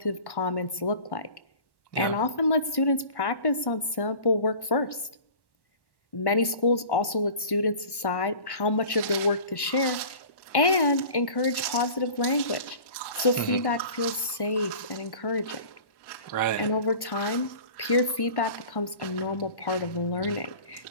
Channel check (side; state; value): right; late; 1.1 ms